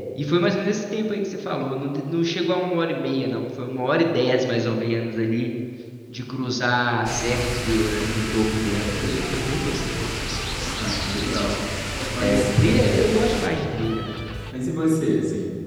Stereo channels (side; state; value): both; identical; correlation 1.00